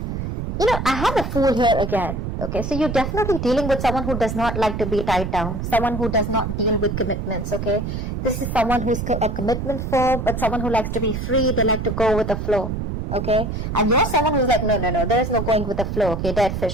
You know, I have a Fool here again. Okay, so you're definitely dealing with someone who does not like to be tied down. Someone who does not deal with commitments, okay? This is someone who's a commitment phobe, but someone who likes to be free. They like to go with the flow, okay? And you're someone who's like, no, there is no going with the flow, okay? Dead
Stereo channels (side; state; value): right; noise; rumble, 4 dB below the sound